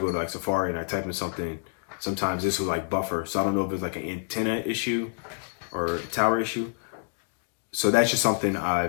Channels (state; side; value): silent; right; digital silence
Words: to Safari and I type in something, sometimes this will buffer. So I don't know if it's an antenna issue or a tower issue. So that's just something